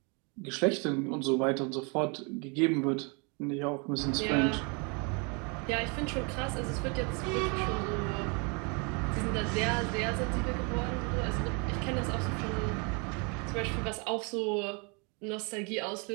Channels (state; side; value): quieter; left; 33.0 dB